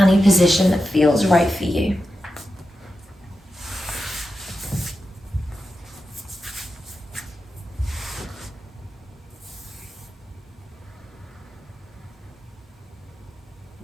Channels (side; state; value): both; normal; correlation 0.90